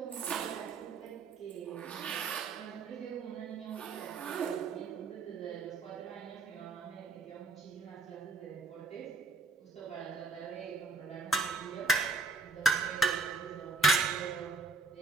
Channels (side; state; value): left; quieter; 3.8 dB